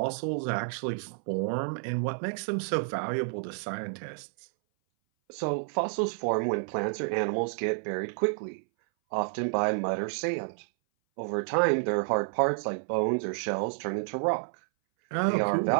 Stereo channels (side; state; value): left; silent; 58 dB below the other